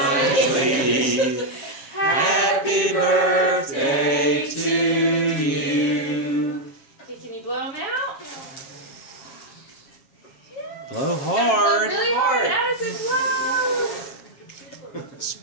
Happy birthday to you. Okay, can you blow them out? Blow hard. Really hard. Addison, blow.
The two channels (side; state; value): right; late; 7.4 ms